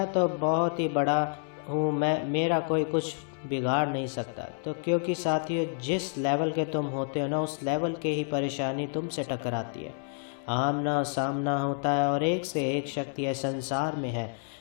तो बहुत ही बड़ा हूँ, मेरा कोई कुछ बिगाड़ नहीं सकता। तो क्योंकि साथियों, जिस लेवल के तुम होते हो ना, उस लेवल के ही परेशानी तुमसे टकराती है, आमना सामना होता है, और एक से एक शक्तियाँ संसार में है,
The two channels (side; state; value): right; silent; 59 dB below the other